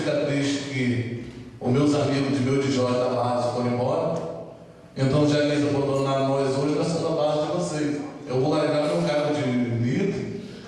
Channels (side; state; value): both; identical; correlation 1.00